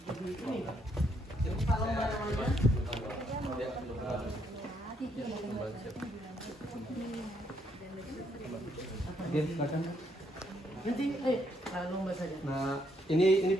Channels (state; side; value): normal; both; correlation 0.73